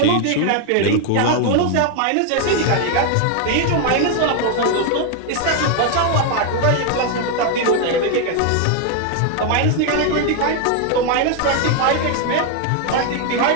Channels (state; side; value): different; both; correlation 0.00